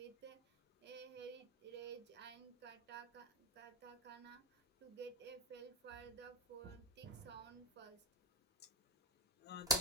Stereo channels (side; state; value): both; normal; correlation 0.06